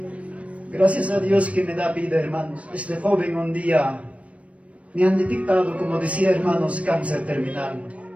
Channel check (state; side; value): late; left; 0.064 ms